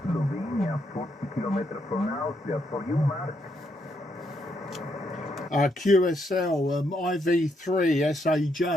40 kilometers from Austria. For you, Mark. QSL IV3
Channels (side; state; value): both; normal; correlation 0.77